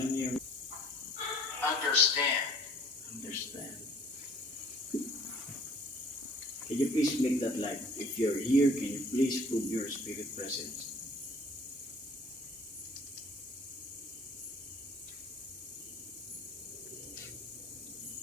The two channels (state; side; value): normal; both; correlation 0.53